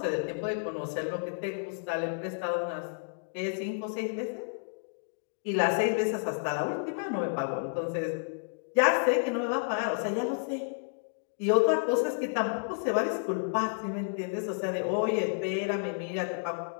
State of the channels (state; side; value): silent; right; digital silence